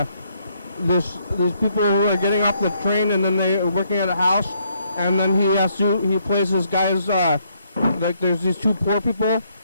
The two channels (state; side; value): inverted; both; correlation -0.72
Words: these people who are getting off the train and then they are working at a house, and then he plays this guy's like there's these two poor people